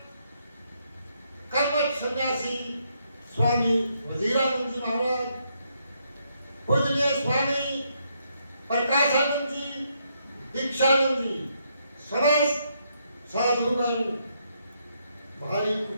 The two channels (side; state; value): both; inverted; correlation -0.76